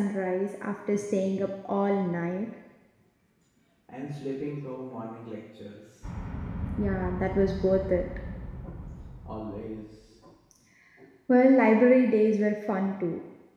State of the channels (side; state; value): both; identical; correlation 1.00